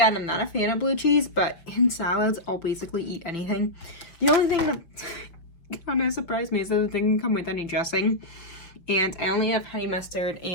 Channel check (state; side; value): late; right; 5.7 ms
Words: I'm not a fan of blue cheese, but in salads I'll basically eat anything. The only thing that kind of surprised me is that it didn't come with any dressing, and I only have honey mustard